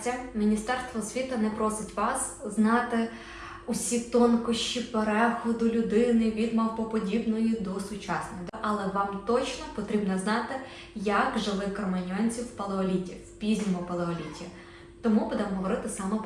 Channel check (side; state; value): both; identical; correlation 1.00